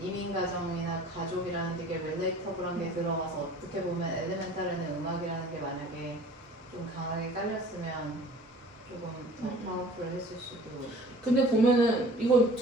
가정이나 가족이라는 되게 릴레이터블한 게 들어가서 어떻게 보면 엘리멘탈에는 음악이라는 게 만약에 좀 강하게 깔렸으면 조금 더 파워풀했을 수도. 근데 보면은 이건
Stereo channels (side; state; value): both; normal; correlation 0.46